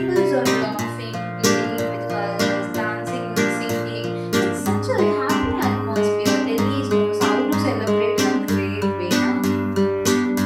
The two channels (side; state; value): both; identical; correlation 1.00